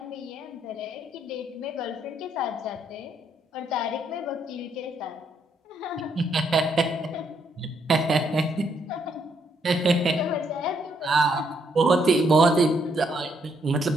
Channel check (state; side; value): normal; both; correlation 0.73